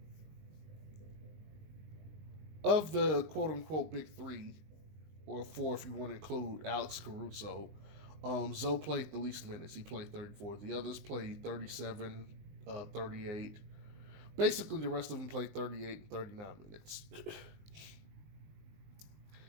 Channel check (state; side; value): late; left; 20 ms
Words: of the quote unquote big 3, or 4 if you want to include Alex Caruso, Zoe played the least minutes. He played 34. The others played 37, 38. Basically, the rest of them played 38 and 39 minutes.